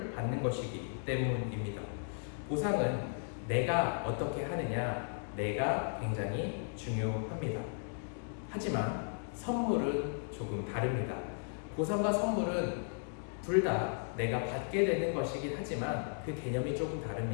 받는 것이기 때문입니다. 보상은 내가 어떻게 하느냐, 내가 굉장히 중요합니다. 하지만 선물은 조금 다릅니다. 보상과 선물은 둘 다 내가 받게 되는 것이긴 하지만 그 개념이 조금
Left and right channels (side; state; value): right; silent; digital silence